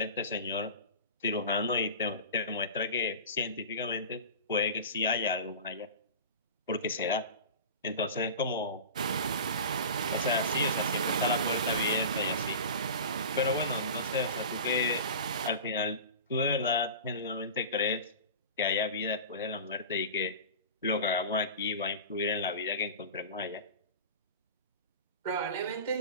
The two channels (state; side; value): inverted; both; correlation -0.33